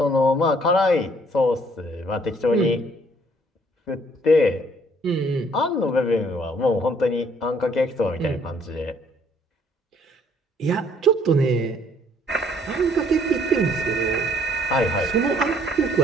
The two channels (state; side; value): normal; both; correlation 0.62